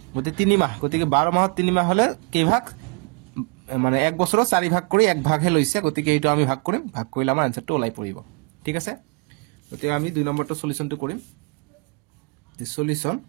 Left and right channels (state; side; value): quieter; left; 32.7 dB